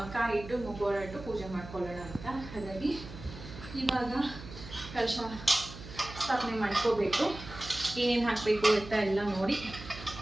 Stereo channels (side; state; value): right; noise; hum, 13 dB below the sound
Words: ಕಾಯಿ ಇಟ್ಟು ಮುಖವಾಡ ಇಟ್ಟು ಪೂಜೆ ಮಾಡ್ಕೊಳ್ಳೋಣ ಅಂತ. ಹಾಗಾಗಿ ಇವಾಗ ಕಲಶ ಸ್ಥಾಪನೆ ಮಾಡ್ಕೋಬೇಕು, ಏನೇನು ಹಾಕಬೇಕು ಅಂತ ಎಲ್ಲ ನೋಡಿ